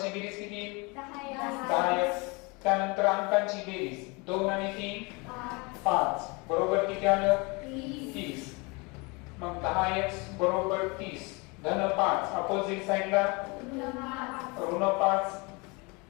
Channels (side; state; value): right; quieter; 28.2 dB